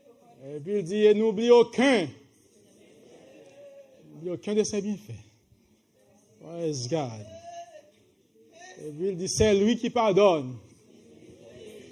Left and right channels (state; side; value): identical; both; correlation 1.00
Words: Et puis il dit, n'oublie aucun de ses bienfaits. Praise God. Et puis il dit, c'est lui qui pardonne